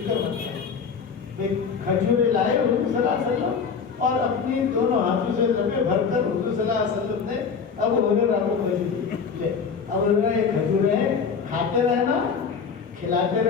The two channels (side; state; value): right; quieter; 6.0 dB